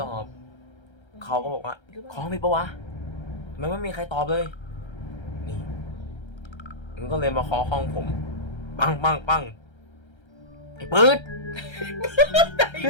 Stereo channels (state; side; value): late; right; 1.3 ms